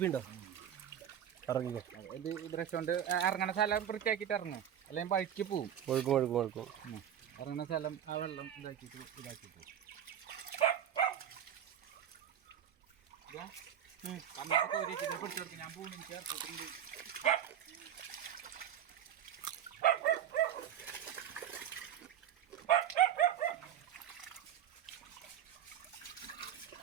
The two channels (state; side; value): quieter; left; 9.9 dB